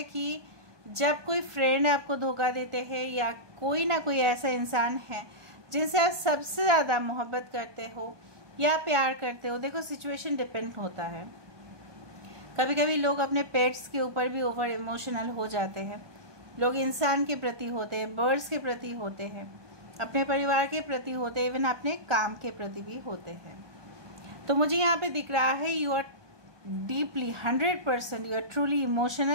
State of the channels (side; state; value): left; late; 1.2 ms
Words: कि जब कोई फ्रेंड आपको धोखा देते हैं या कोई ना कोई ऐसा इंसान है जिनसे आप सबसे ज़्यादा मोहब्बत करते हो या प्यार करते हो। देखो सिचुएशन डिपेंड होता है। कभी कभी लोग अपने पेट्स के ऊपर भी ओवर इमोशनल हो जाते हैं। लोग इंसान के प्रति होते हैं, बर्ड्स के प्रति होते हैं, अपने परिवार के प्रति होते हैं, इवन अपने काम के प्रति भी होते हैं। तो मुझे यहाँ पे दिख रहा है you are deeply 100% you are truly